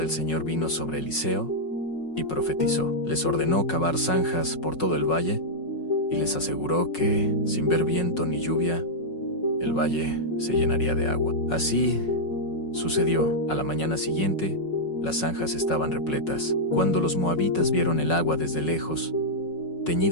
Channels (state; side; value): late; right; 5.4 ms